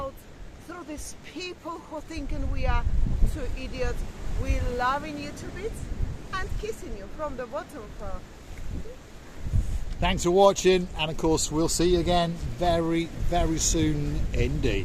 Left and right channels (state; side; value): identical; both; correlation 1.00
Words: through these people who thinking we are two idiots. We're loving you to bits and kissing you from the bottom. Thanks for watching, and of course we'll see you again very, very soon